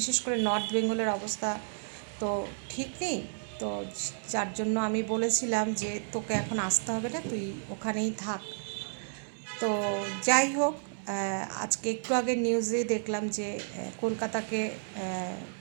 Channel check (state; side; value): silent; left; digital silence